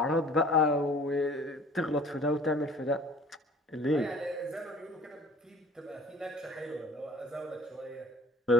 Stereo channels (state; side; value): normal; both; correlation 0.48